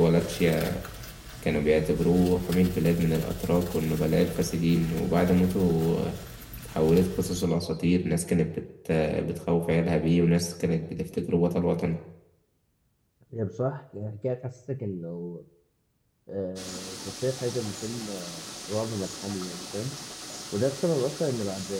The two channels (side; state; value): both; identical; correlation 1.00